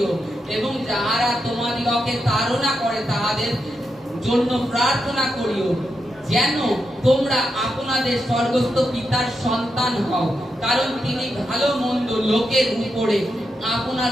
এবং যাহারা তোমাদিগকে তাড়না করে তাহাদের জন্য প্রার্থনা করিও, যেন তোমরা আপনাদের স্বর্গস্থ পিতার সন্তান হও, কারণ তিনি ভালো মন্দ লোকের উপরে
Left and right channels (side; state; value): both; normal; correlation 0.85